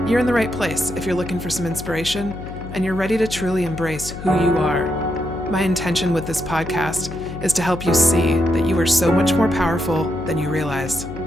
You're in the right place if you're looking for some inspiration and you're ready to truly embrace who you are. My intention with this podcast is to help you see that you are so much more powerful than you realize.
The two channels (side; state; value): left; noise; hum, 10 dB below the sound